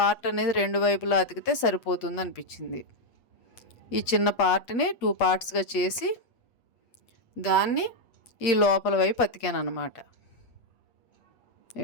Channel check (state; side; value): late; right; 8.3 ms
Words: అనేది 2 వైపులా అతికితే సరిపోతుంది అనిపించింది. ఈ చిన్న పార్ట్ని 2 పార్ట్స్గా చేసి దాన్ని ఈ లోపల వైపు అతికాను అనమాట.